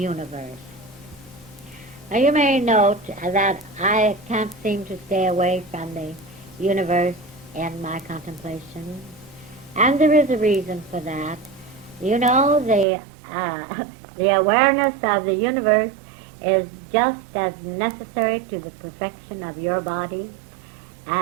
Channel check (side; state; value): left; drops out; at 12.9 s